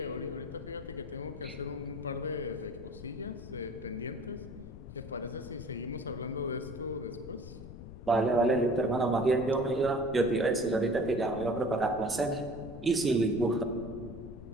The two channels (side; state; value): left; noise; rumble, 13 dB below the sound